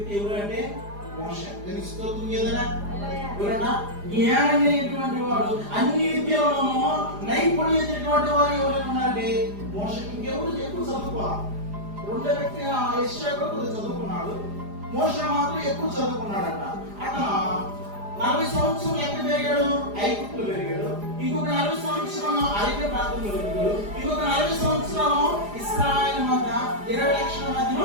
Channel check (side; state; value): left; late; 4.9 ms